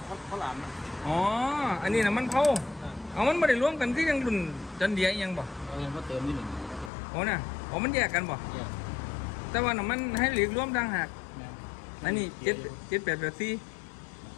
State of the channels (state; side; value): drops out; right; at 6.9 s